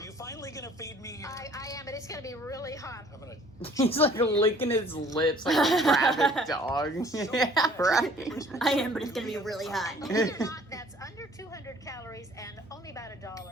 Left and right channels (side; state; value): both; normal; correlation 0.55